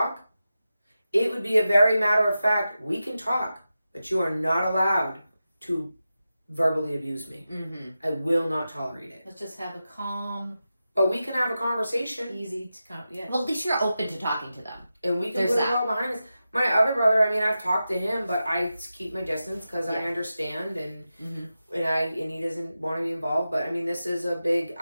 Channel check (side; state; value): both; inverted; correlation -0.92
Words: it would be a very matter of fact, we can talk, but you are not allowed to verbally abuse me. Mm-hmm. I will not tolerate it. Let's just have a calm, But we can have a conversation. easy to yeah. Well, at least you're open to talking to them. And we can There's put that. it all behind us. My other brother, I've talked to him, but I keep my distance because I Yeah. understand and Mm-hmm. and he doesn't want to be involved. But this is a big